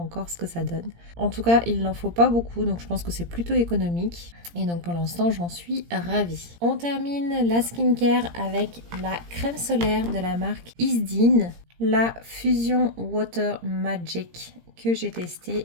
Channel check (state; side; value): late; left; 17 ms